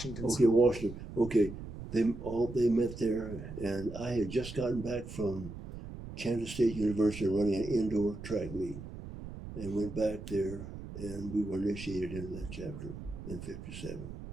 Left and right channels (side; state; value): right; noise; rumble, 11 dB below the sound